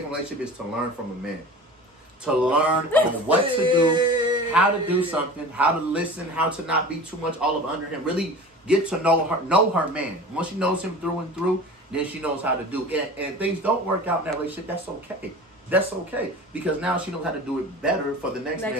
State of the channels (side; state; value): both; normal; correlation 0.37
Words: from a relationship is to learn from a man. To learn on what to do, how to do something, how to listen, how to not be too much all up under him. Really get to know her man. Once she knows him through and through, then she knows how to do. And if things don't work out in that relationship, that's okay. That's okay. Because now she knows how to do it better for the next